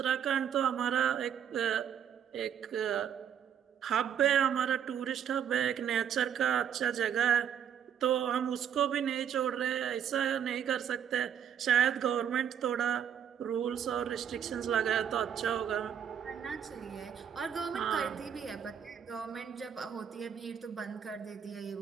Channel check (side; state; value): left; quieter; 8.7 dB